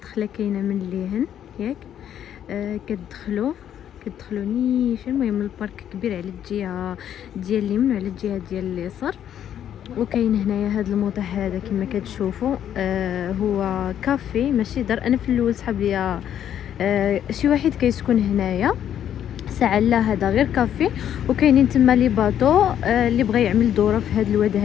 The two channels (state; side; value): quieter; right; 10.1 dB